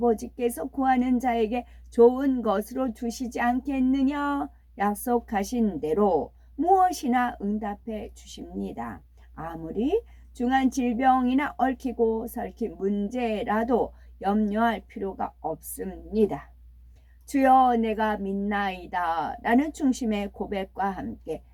구하는 자에게 좋은 것으로 주시지 않겠느냐 약속하신 대로 무엇이나 응답해 주십니다. 아무리 중한 질병이나 얽히고 설킨 문제라도 염려할 필요가 없습니다. 주여 내가 믿나이다 라는 중심의 고백과 함께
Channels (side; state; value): both; identical; correlation 1.00